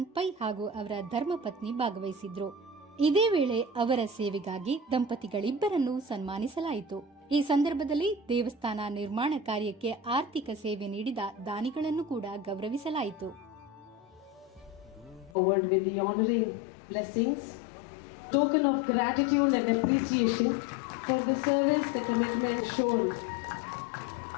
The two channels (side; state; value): right; drops out; at 15.4 s